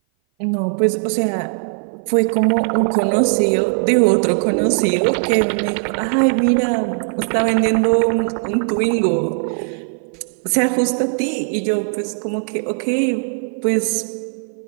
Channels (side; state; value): left; silent; 57 dB below the other